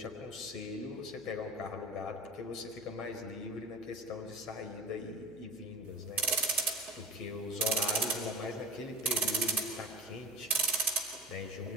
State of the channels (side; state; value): right; noise; hum, 27 dB below the sound